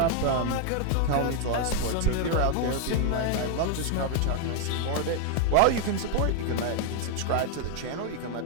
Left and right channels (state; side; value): different; both; correlation 0.00